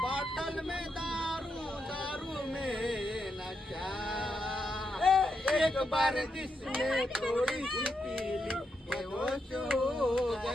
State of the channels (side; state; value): both; normal; correlation 0.83